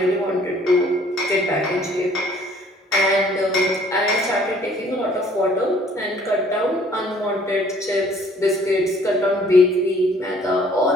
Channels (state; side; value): normal; both; correlation 0.58